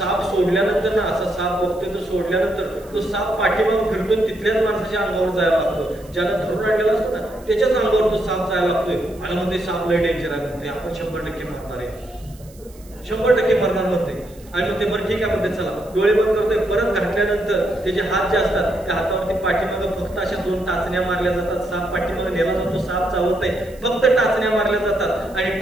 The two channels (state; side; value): noise; right; hiss, 25 dB below the sound